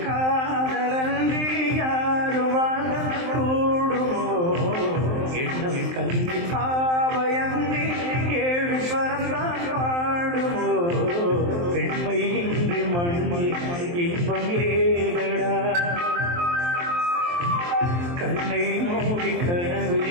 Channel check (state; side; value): late; left; 23 ms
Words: காதலன்றி யாரும் வாழ கூடுமோ எண்ணம் கண்ணி பாவையன்றி ஏழு ஸ்வரம்தான் பாடுமோ பெண்மை இன்றி மண்ணில் இன்பம் ஏதடா கண்ணை மூடி